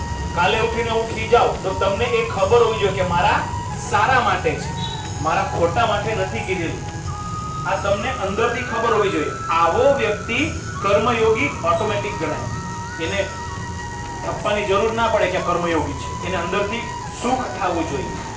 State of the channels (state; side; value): identical; both; correlation 1.00